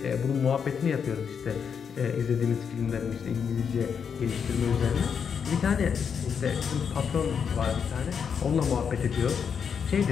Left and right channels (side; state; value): right; quieter; 6.9 dB